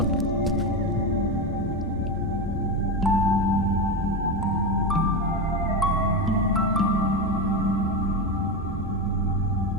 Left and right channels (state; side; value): normal; both; correlation 0.15